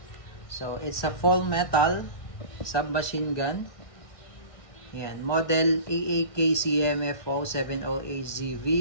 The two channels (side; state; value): right; late; 1.6 ms